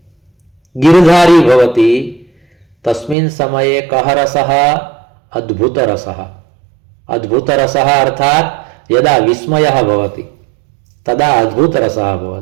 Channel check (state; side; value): drops out; left; at 3.2 s